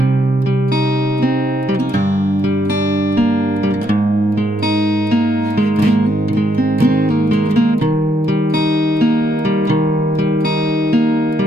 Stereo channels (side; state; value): both; normal; correlation 0.74